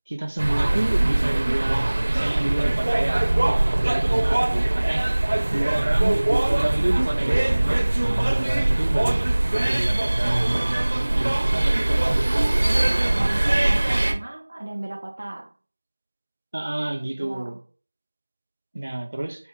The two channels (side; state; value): both; inverted; correlation -1.00